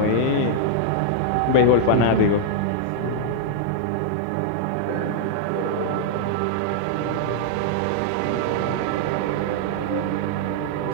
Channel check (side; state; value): both; different; correlation -0.01